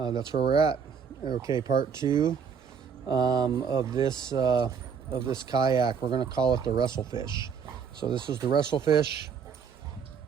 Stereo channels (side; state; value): left; quieter; 6.6 dB